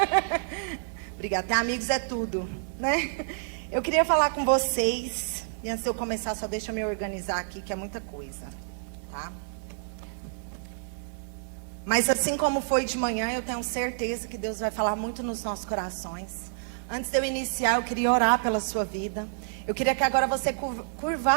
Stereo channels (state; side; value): silent; left; digital silence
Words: Obrigada, ter amigos é tudo, né? Eu queria falar com vocês, e antes de eu começar, só deixa eu me organizar aqui, que é muita coisa, tá? Mas assim como foi de manhã, eu tenho certeza que Deus vai falar muito nos nossos corações. Antes de eu iniciar, eu queria orar pela sua vida. Eu queria que agora você